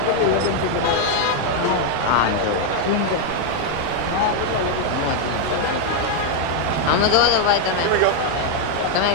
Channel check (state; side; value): different; both; correlation 0.00